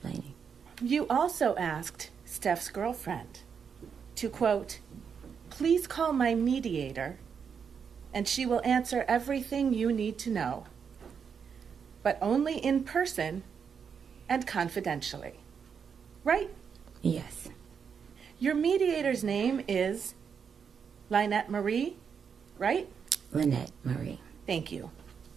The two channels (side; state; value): left; quieter; 6.7 dB